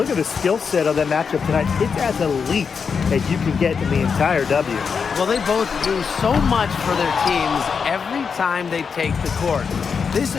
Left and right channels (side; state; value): right; quieter; 5.9 dB